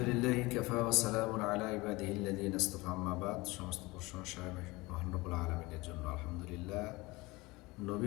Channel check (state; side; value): quieter; right; 22.4 dB